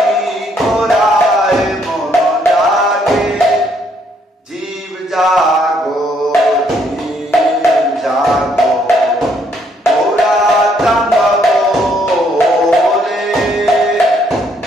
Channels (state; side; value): normal; both; correlation 0.69